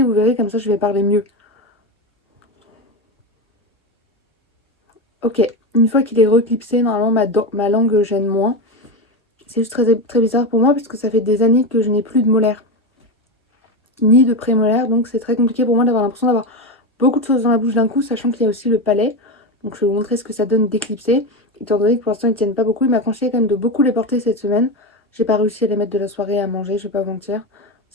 vous verrez, comme ça je vais parler mieux. Ok, une fois qu'il est reclipsé, normalement ma langue gêne moins. C'est juste très, très bizarre pour moi parce que ça fait des années que je n'ai plus de molaires ni de prémolaires, donc c'est très compliqué pour moi d'avoir l'impression d'avoir beaucoup de choses dans la bouche d'un coup, sachant qu'il y a aussi le palais. Donc je vais vous montrer ce que ça donne d'éclipser. Étant donné que pour l'instant ils tiennent pas beaucoup, il m'a conseillé quand même de beaucoup les porter cette semaine. J'ai pas réussi à les mettre de la soirée à manger, je vais pas vous mentir.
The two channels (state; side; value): normal; both; correlation 0.17